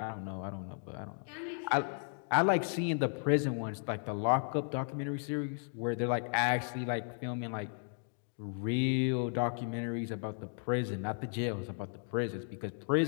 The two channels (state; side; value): silent; right; 55 dB below the other